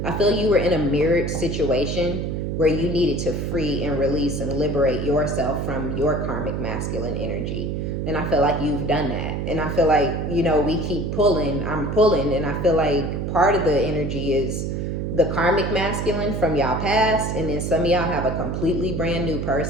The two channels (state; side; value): noise; right; hum, 2 dB below the sound